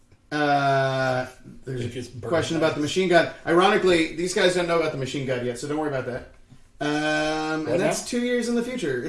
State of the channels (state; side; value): identical; both; correlation 1.00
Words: there's a question about the machine god. Ironically, these guys don't know about the machine god yet, so don't worry about that. And that's 2 years in the future.